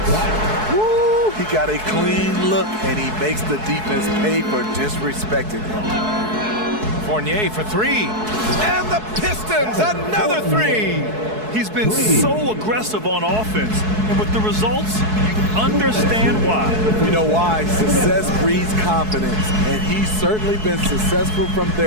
Woo! He got a clean look, and he makes the defense pay for disrespecting him. Fournier for three. And the Pistons, another three. He's been so aggressive on offense, and with the results, you understand why. You know why? Success breeds confidence, and he's certainly been successful from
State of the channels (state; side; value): late; left; 4.7 ms